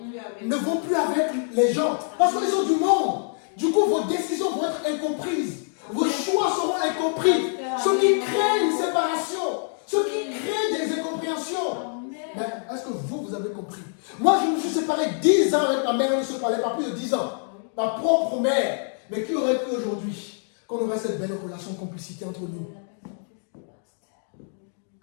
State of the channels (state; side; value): silent; right; 60 dB below the other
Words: ne vont plus avec les gens. Parce qu'ils sont du monde. Du coup, vos décisions vont être incomprises. Vos choix seront incompris. Ce qui crée une séparation. Ce qui crée des incompréhensions. Mais est-ce que vous avez compris? Moi, je me suis séparé 10 ans avec ma mère. On ne se parlait pas plus de 10 ans. Ma propre mère. Mais qui aurait cru aujourd'hui qu'on aurait cette belle relation de complicité entre nous?